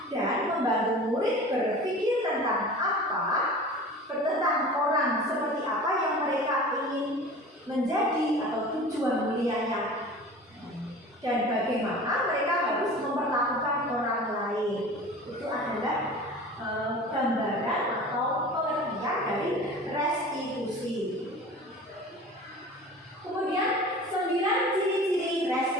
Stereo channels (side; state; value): both; normal; correlation 0.39